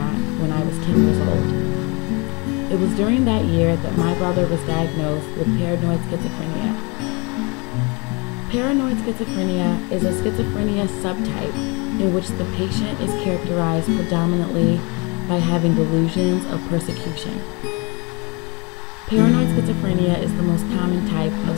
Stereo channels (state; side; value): quieter; right; 29.9 dB